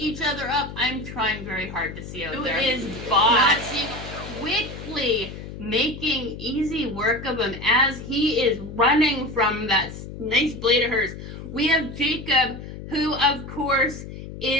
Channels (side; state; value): left; noise; hum, 11 dB below the sound